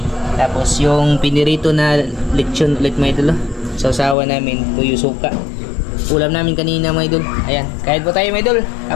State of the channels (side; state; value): right; drops out; at 4.2 s